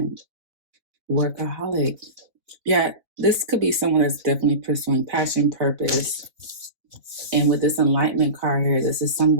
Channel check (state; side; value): late; left; 4.1 ms